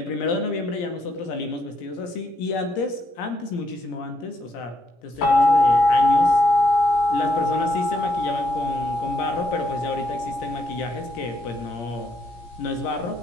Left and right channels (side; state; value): right; late; 17 ms